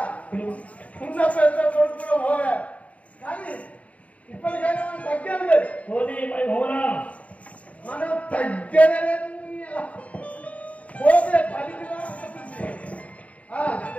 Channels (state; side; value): late; right; 0.067 ms